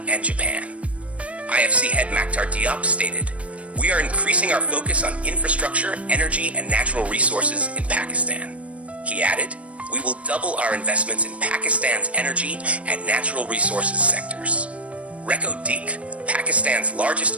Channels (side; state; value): left; late; 0.064 ms